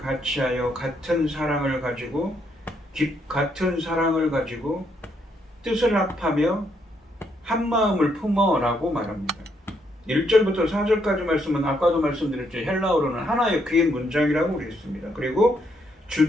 같이하여 같은 사랑을 가지고 뜻을 합하며 한 마음을 품어라고 말합니다. 1절부터 4절까지 말씀은 아까도 말씀드렸죠. 헬라어로는 하나의 긴 문장이라고 그랬습니다. 그리고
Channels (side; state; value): both; normal; correlation 0.74